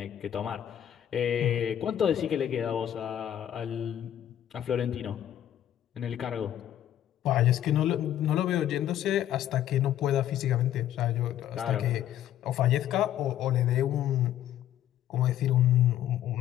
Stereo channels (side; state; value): right; quieter; 11.4 dB